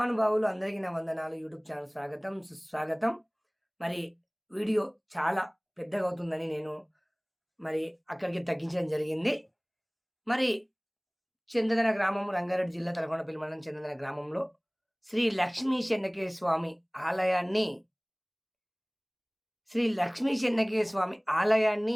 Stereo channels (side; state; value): both; identical; correlation 1.00